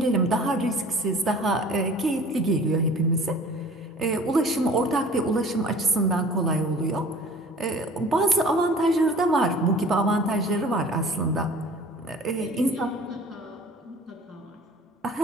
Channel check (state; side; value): normal; both; correlation 0.47